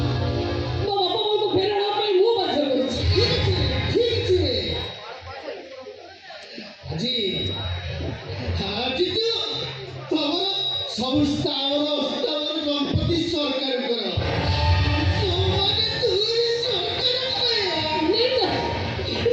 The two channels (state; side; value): identical; both; correlation 1.00